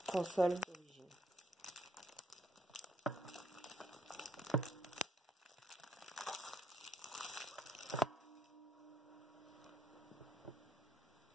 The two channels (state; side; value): normal; both; correlation 0.73